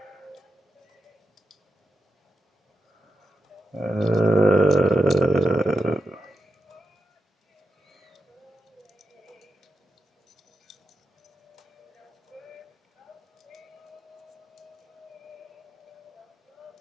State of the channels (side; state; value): both; normal; correlation 0.89